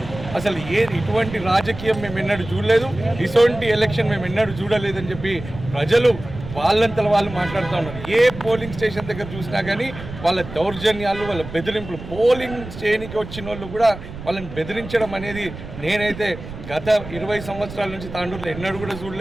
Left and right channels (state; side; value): noise; right; rumble, 12 dB below the sound